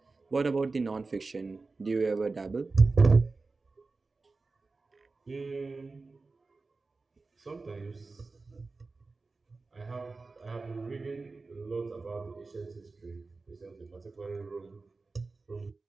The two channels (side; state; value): left; quieter; 3.8 dB